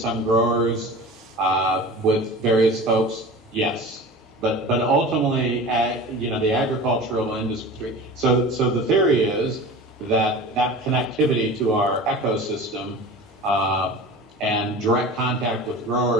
growers with various folks? Yes. But ultimately, you know, the agricultural industry. So the theory is that connectivity to our ecosystem and direct contact with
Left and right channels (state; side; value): normal; both; correlation 0.36